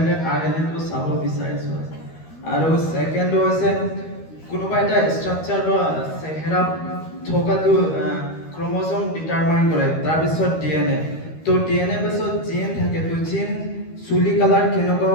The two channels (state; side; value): late; right; 13 ms